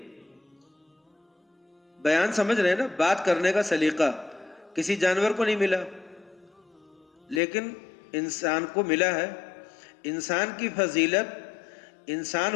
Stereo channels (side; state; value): right; drops out; at 7.4 s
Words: بیان سمجھ رہے ہیں نا، بات کرنے کا سلیقہ کسی جانور کو نہیں ملا، لیکن انسان کو ملا ہے۔ انسان کی فضیلت انسان